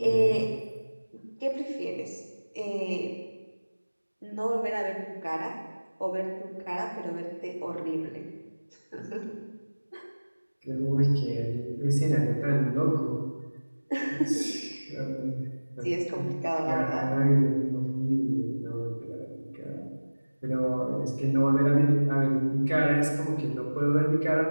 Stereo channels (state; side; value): inverted; both; correlation -1.00